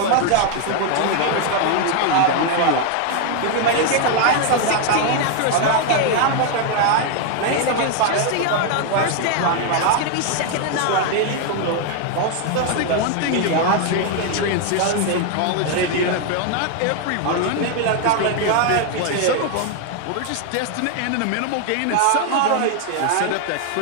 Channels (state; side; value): different; both; correlation 0.01